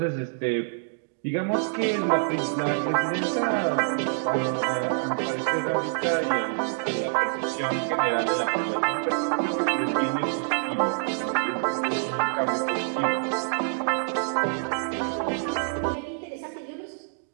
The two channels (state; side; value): silent; left; digital silence